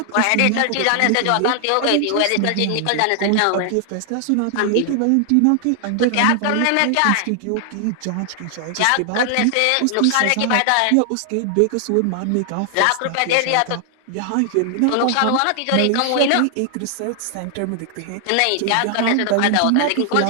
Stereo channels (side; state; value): both; different; correlation 0.00